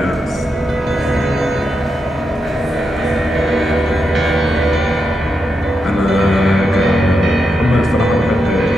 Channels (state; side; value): normal; both; correlation 0.85